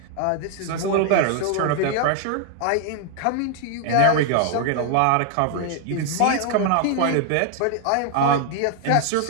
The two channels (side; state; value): both; different; correlation 0.00